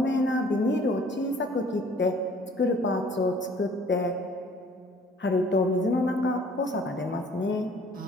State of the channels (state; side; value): normal; both; correlation 0.55